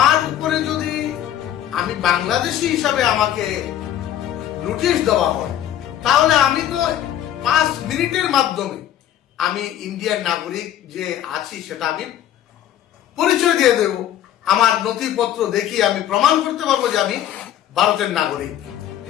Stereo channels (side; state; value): right; quieter; 11.4 dB